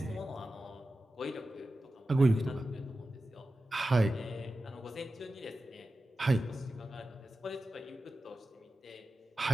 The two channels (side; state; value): both; normal; correlation 0.93